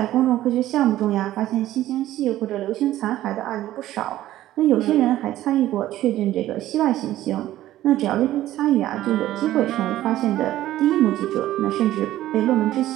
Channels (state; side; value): quieter; left; 14.1 dB